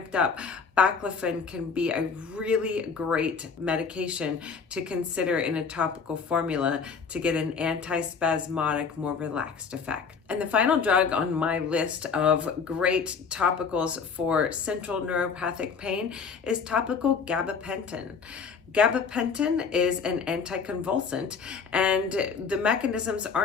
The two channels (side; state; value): right; quieter; 5.7 dB